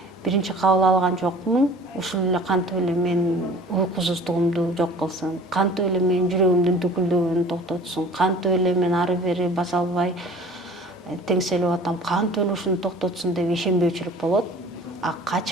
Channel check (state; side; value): normal; both; correlation 0.46